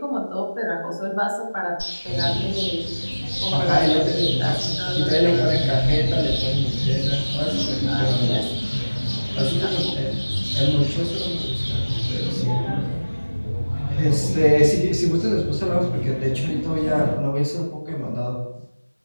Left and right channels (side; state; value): both; inverted; correlation -1.00